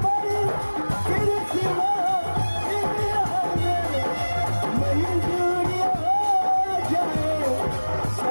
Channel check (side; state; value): both; inverted; correlation -1.00